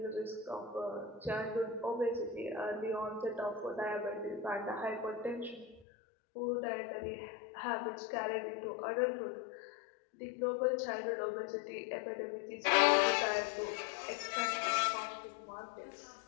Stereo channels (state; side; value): drops out; right; at 5.9 s